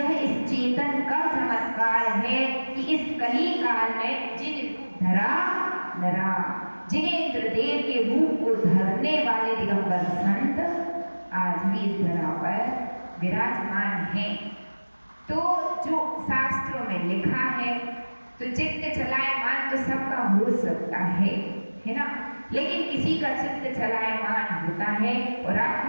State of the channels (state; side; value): inverted; both; correlation -1.00